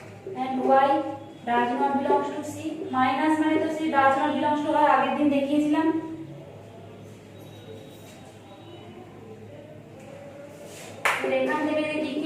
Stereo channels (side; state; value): both; identical; correlation 1.00